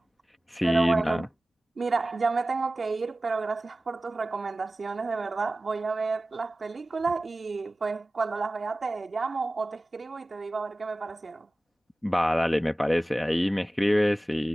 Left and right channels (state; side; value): normal; both; correlation 0.97